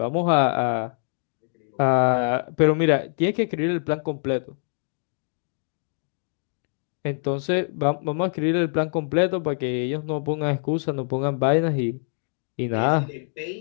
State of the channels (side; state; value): right; silent; digital silence